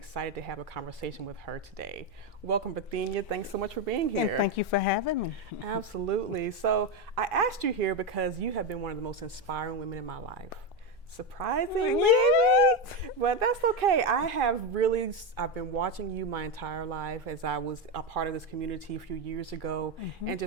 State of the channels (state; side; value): normal; both; correlation 0.11